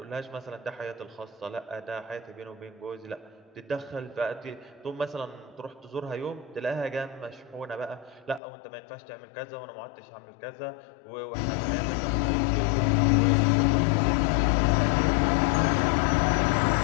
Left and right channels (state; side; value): drops out; right; at 8.4 s